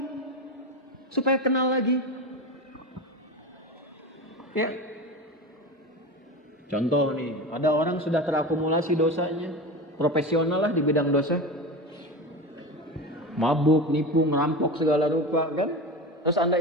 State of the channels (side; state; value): both; normal; correlation 0.25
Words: supaya kenal lagi. Ya. Contoh nih, ada orang sudah terakumulasi dosanya, profesional lah di bidang dosa, mabuk, nipu, ngerampok segala rupa, kan? Terus Anda